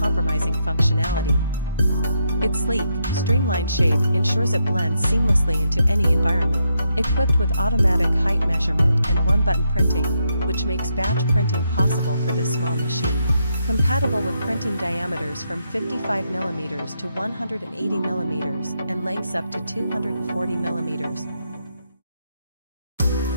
functionality. Its sleek, streamlined shape ensures it blends seamlessly into any environment, equipped with automatic height measurement and one-button printing, which makes batch printing possible for this small machine. Compatible with printing diameters from 55mm to 180mm and lengths up to 240mm.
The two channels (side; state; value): both; inverted; correlation -0.80